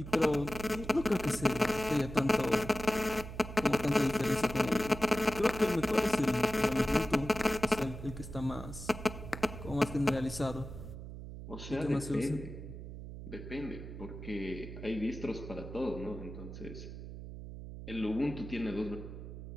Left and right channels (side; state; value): right; noise; hum, 10 dB below the sound